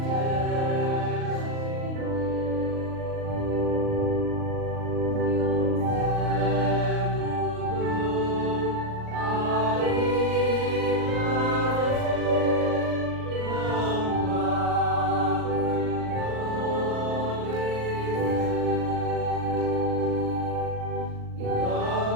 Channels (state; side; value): late; left; 39 ms